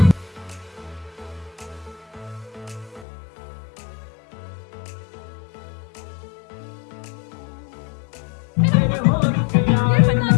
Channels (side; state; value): right; drops out; at 3.1 s